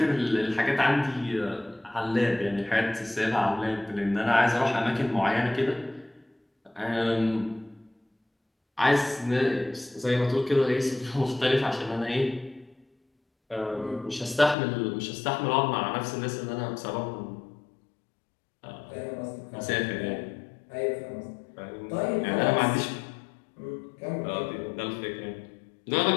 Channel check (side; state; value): right; drops out; at 14.6 s